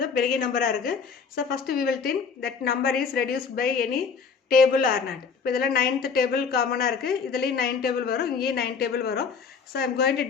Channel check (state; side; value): quieter; right; 5.7 dB